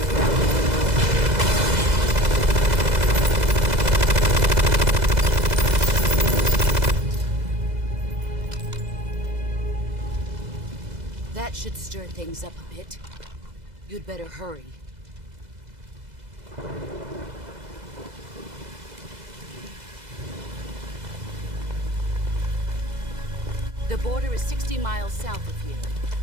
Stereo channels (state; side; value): late; left; 2.0 ms